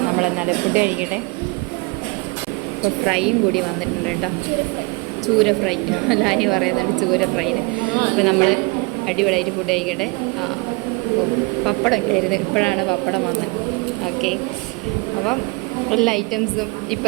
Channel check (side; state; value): left; quieter; 28.8 dB